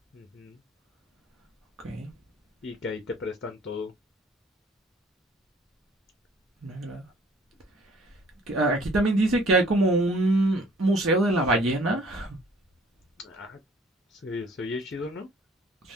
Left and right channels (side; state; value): both; normal; correlation 0.55